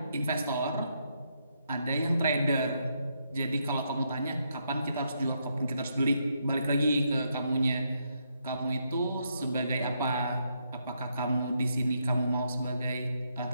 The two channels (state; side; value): inverted; both; correlation -0.78